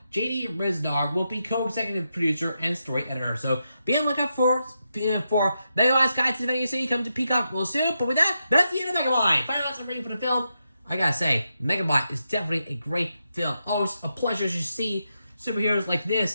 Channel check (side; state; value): both; inverted; correlation -0.85